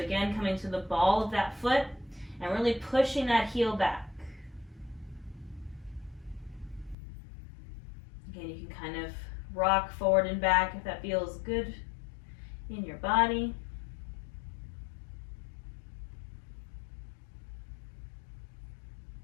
coming to the ball of that foot. And really pushing that heel back. Again, you can kind of rock forward and back if that feels good in your body.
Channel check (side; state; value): right; drops out; at 7.0 s